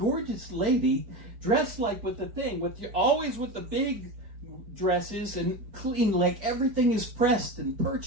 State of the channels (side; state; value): left; late; 4.6 ms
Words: lady dressed like with the thing, always with the big dresses and clean, like everything is pressed and